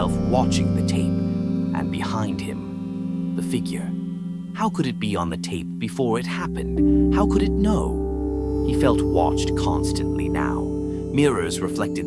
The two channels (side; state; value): both; identical; correlation 1.00